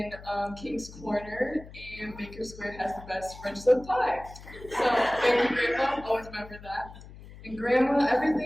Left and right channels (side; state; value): left; noise; hum, 17 dB below the sound